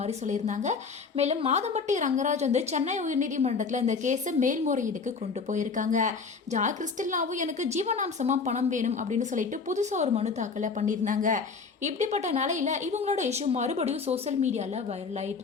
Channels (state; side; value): quieter; right; 5.0 dB